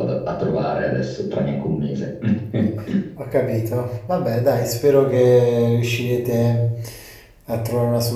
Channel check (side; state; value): both; identical; correlation 1.00